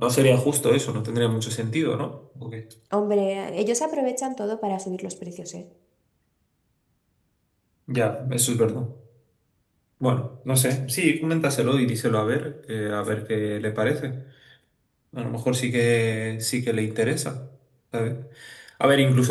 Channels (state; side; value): identical; both; correlation 1.00